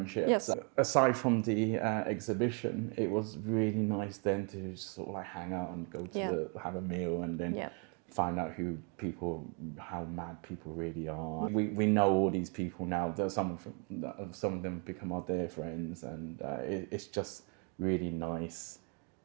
Yes. Aside from the exhibition, it was really nice then to just sort of like hang out and go to have a meal and then find out how mad people really are. We know all these people now. Some of them become our dear friends, and it's just really nice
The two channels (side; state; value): left; quieter; 36.6 dB